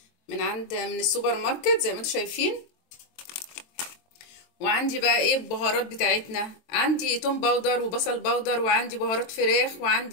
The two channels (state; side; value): late; right; 23 ms